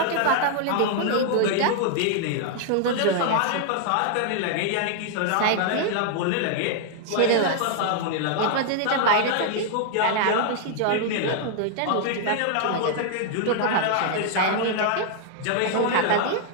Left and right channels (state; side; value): different; both; correlation 0.00